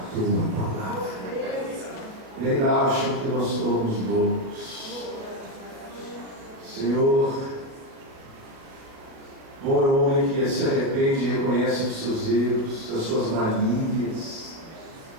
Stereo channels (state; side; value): late; left; 37 ms